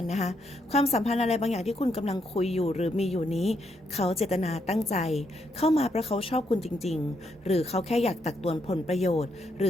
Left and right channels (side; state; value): both; normal; correlation 0.77